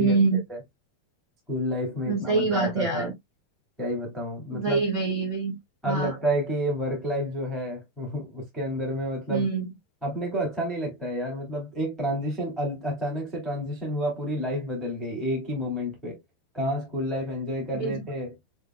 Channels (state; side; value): normal; both; correlation -0.01